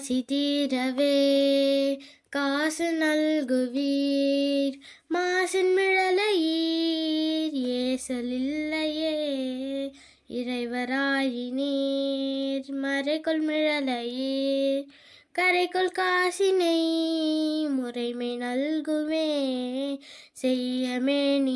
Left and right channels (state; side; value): identical; both; correlation 1.00